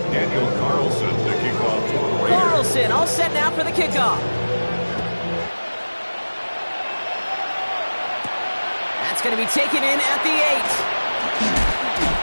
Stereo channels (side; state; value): both; inverted; correlation -1.00